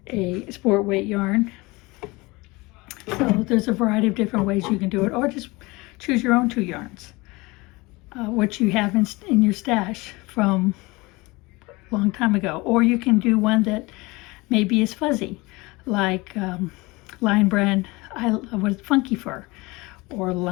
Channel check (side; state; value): right; quieter; 23.4 dB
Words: a sport weight yarn. So there's a variety of different ways you can do it, or just choose your own 2 yarns, what you have in your stash from a long time ago. Or you can do one that maybe is fuzzy, like Lionbrand with Funky Fur, or